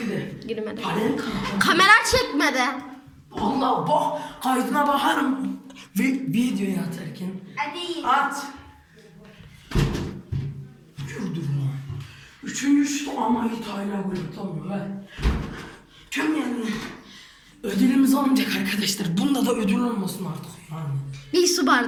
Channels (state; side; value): identical; both; correlation 1.00